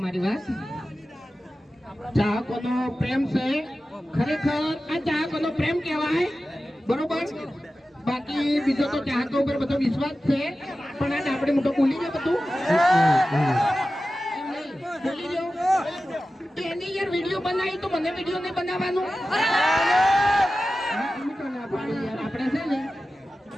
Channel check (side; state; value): both; normal; correlation 0.94